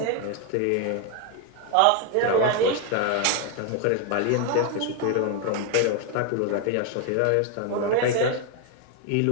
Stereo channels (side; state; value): both; different; correlation 0.01